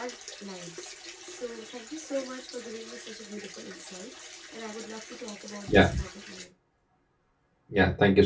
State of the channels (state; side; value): identical; both; correlation 1.00